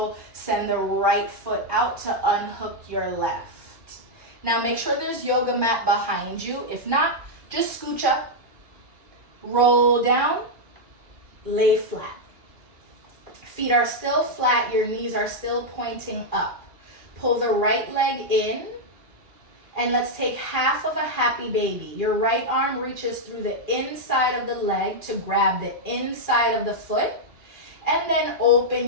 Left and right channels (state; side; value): late; left; 2.4 ms